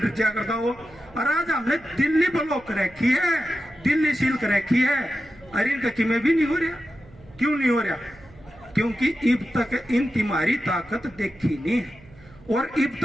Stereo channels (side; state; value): right; noise; hum, 24 dB below the sound